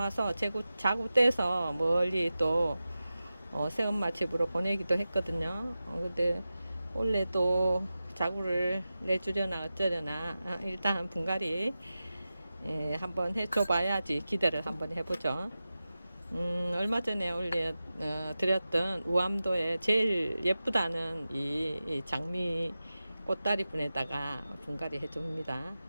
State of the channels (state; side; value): inverted; both; correlation -0.94